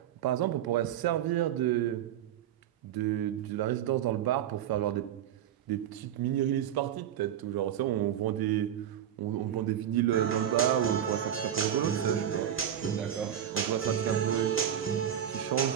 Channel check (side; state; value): left; quieter; 10.2 dB